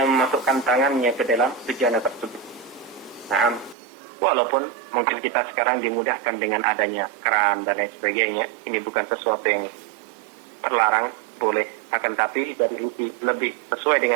memasukkan tangannya ke dalam bejana tersebut. Walaupun mungkin kita sekarang dimudahkan dengan adanya keran dan lain sebagainya, ini bukan sesuatu yang terlarang, boleh. Akan tapi dari lebih sesuai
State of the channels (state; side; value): drops out; left; at 3.8 s